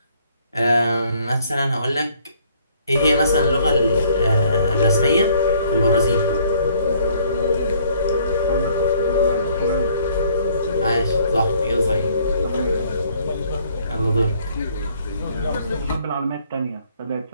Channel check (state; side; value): inverted; both; correlation -0.62